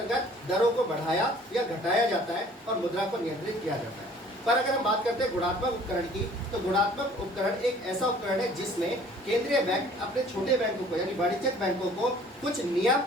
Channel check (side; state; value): both; normal; correlation 0.53